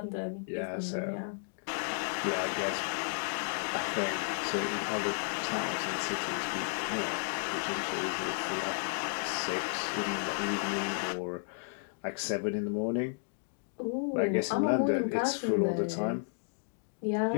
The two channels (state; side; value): silent; right; digital silence